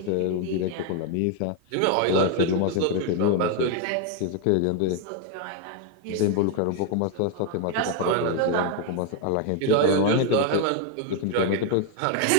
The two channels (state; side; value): different; both; correlation 0.01